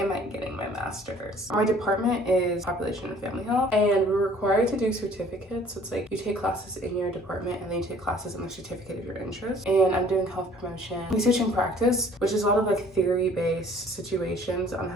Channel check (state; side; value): normal; both; correlation 0.54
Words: I getting my master's? My department is population and family health, and we're required to do certificates. So it's like you take classes in your department and then you take classes in the certificate of your interest. And I'm doing health promotion, research and practice, which is a lot of like theory-based situations on